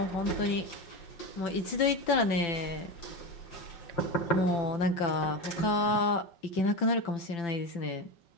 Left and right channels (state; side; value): late; right; 5.9 ms